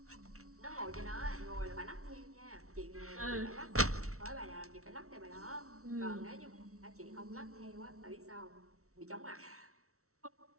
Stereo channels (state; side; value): late; left; 0.63 ms